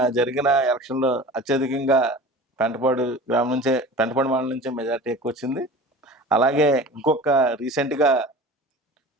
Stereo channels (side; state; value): both; normal; correlation 0.38